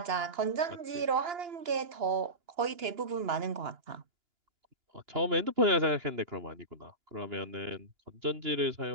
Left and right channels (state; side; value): late; left; 2.9 ms